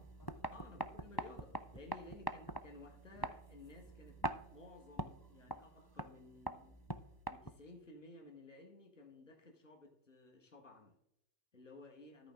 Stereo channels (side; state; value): right; late; 1.1 ms